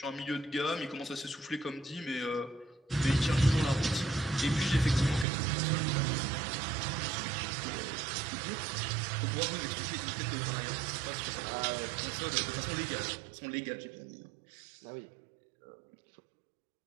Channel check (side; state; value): left; drops out; at 5.2 s